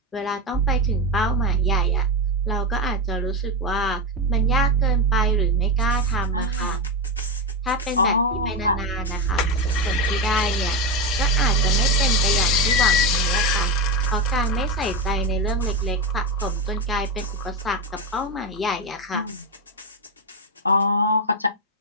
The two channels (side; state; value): both; normal; correlation 0.12